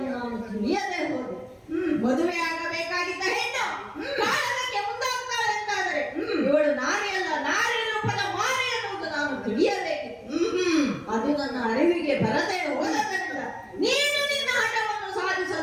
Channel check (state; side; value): identical; both; correlation 1.00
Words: ನಾನು ತಿಳಿಯದೆ ಹೋದೆ. ಮದುವೆ ಆಗಬೇಕಾಗಿದ್ದ ಹೆಣ್ಣು ಕಾಲಕ್ಕೆ ಮುಂದಾಗ್ತಾಳೆ ಅಂತ ಅದು ನನ್ನ ಅರಿವಿಗೆ ಬರದೆ ಹೋದದರಿಂದ ನೀನು ನಿನ್ನ ಹಠವನ್ನು